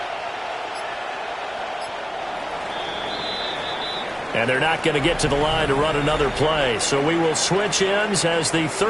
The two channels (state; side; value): identical; both; correlation 1.00